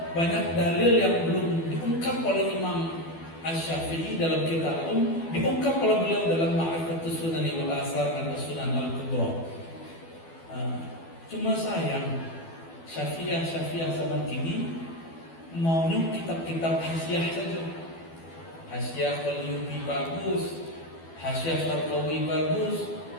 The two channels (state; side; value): late; right; 12 ms